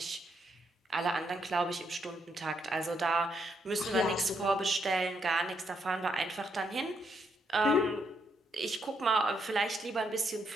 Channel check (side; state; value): both; normal; correlation 0.77